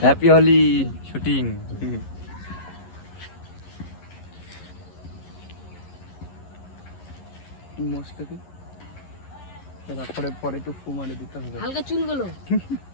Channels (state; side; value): late; right; 11 ms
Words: Happy Holi shooting. মোস্টকে তারপরে পরে একটু ফু মারি দিতে হবে। হালকা চুলগুলো